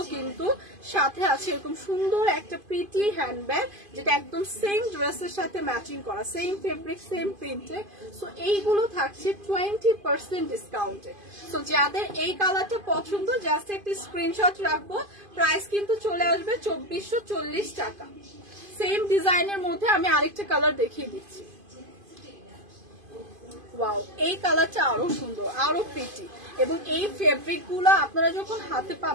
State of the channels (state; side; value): late; left; 2.5 ms